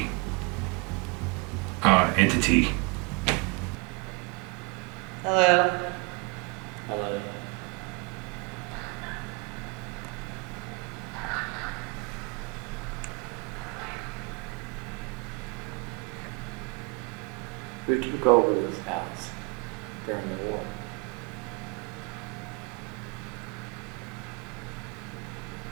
entity. Hello. Hello. Who took over this house during the war?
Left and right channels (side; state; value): left; quieter; 29.5 dB